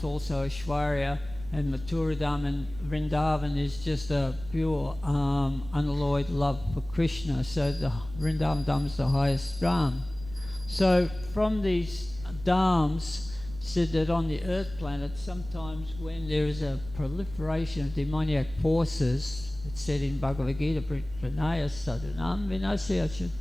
also Aishwarya, and Mathura Dham and Vrindavan is just a pure unalloyed love for Krishna. So the Vrindavan Dham is the highest Dham. So from these Dhams, said that on the earth planet, sometimes when there is a proliferation of demoniac forces, it's said in Bhagavad Gita, Pranaya Sadhanam Vinasya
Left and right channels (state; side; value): noise; right; rumble, 15 dB below the sound